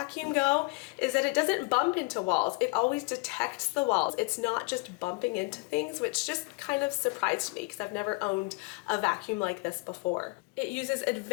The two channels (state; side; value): quieter; right; 27.8 dB